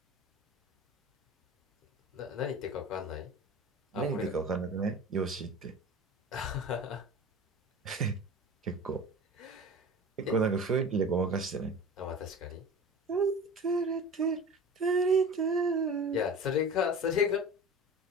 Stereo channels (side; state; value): both; normal; correlation 0.36